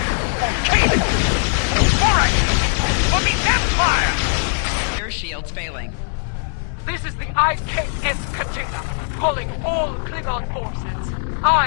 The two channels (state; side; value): silent; right; 66 dB below the other